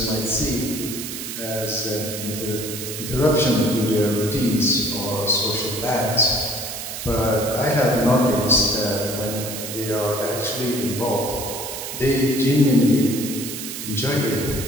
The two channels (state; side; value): noise; right; hiss, 7 dB below the sound